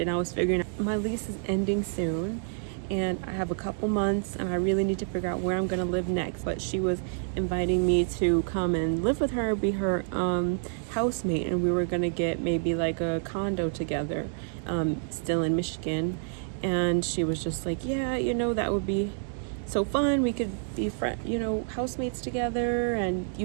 and I was figuring out my lease is ending soon and I have a couple months and I really need to figure out where I'm going to live next. But she was inviting me to come and live with her, be her housemate, and we were going to get maybe like a condo together, still in Michigan. And she was just like, yeah, that would be so fun. We could be housemates together, and you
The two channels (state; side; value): silent; left; digital silence